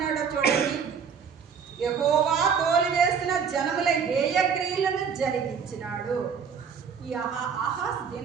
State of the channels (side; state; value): left; quieter; 6.6 dB